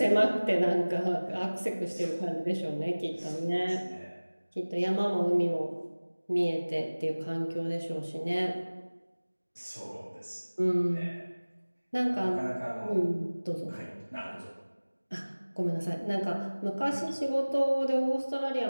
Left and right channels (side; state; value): both; inverted; correlation -1.00